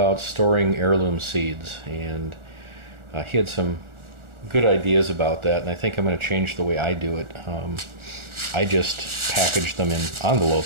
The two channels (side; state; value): left; late; 1.4 ms